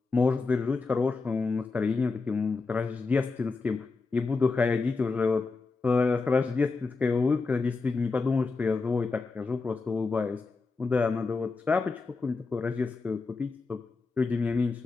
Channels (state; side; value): quieter; right; 4.2 dB